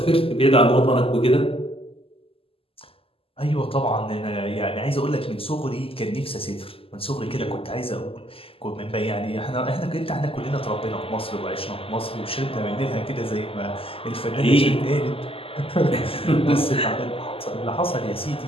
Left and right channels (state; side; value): late; right; 0.27 ms